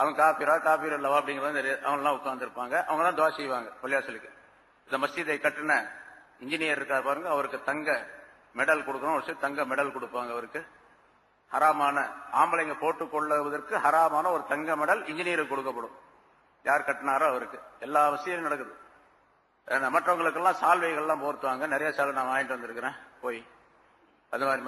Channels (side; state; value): both; identical; correlation 1.00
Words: காபீர் அல்லவா அப்படிங்கிறது தெரியாது, அவங்கெல்லாம் உட்கார்ந்து இருப்பாங்க, அவங்க தான் துஆ செய்வாங்க பள்ளிவாசலுக்கு. இந்த மஸ்ஜிதை கட்டின இன்ஜினியர் இருக்கார் பாருங்க, அவருக்கு தங்க மெடல் கொடுக்கணும், ஒரு தங்க மெடல் கொடுப்பாங்க அவருக்கு. ஹராமான ஆம்பளைங்க போட்டுக் கொள்வதற்கு ஹராமான ஒரு தங்க மெடல் இன்ஜினியருக்கு கொடுக்கப்படும், யார் கட்டினாரோ அவருக்கு. எல்லா விஷயம் நடக்குது. மற்றவங்களுக்கெல்லாம் சால்வைகள்லாம் போர்த்துவாங்க, நிறைய சால்வை நான் வாங்கிட்டு வந்திருக்கிறேன் போய் அது மாதிரி